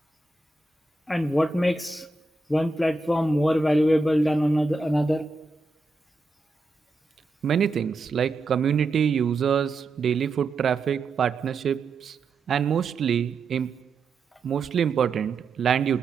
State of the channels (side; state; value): left; quieter; 3.5 dB